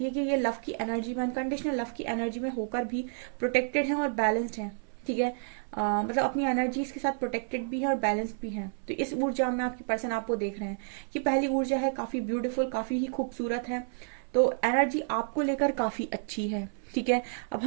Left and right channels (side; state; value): left; silent; 58 dB below the other